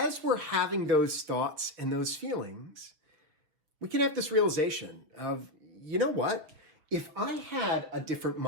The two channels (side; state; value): left; late; 6.6 ms